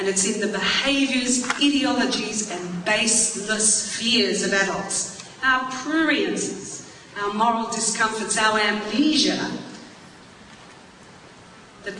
it's in the behaviours, ideologies and baseless fears of adults, our pruriences, our moral discomforts, our amnesia, that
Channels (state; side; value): identical; both; correlation 1.00